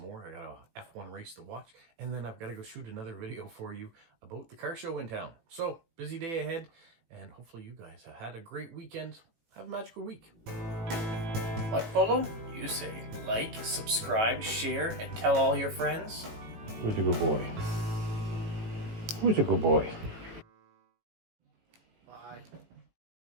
more. I got a F1 race to watch, and then I've got to go shoot another video for you about the car show in town. So, busy day ahead, and hopefully you guys have had a great weekend. Have a magical week. Like, follow? You say like, subscribe, share, and tell all your friends. Who's a good boy? Who's a good boy?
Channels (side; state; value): left; late; 18 ms